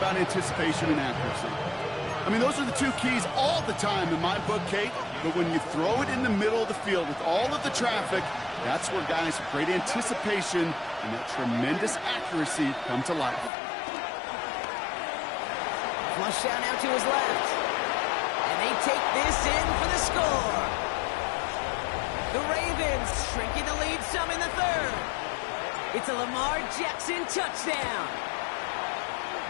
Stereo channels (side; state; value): right; drops out; at 13.5 s